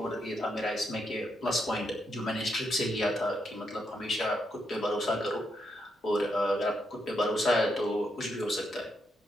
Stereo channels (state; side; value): normal; both; correlation 0.80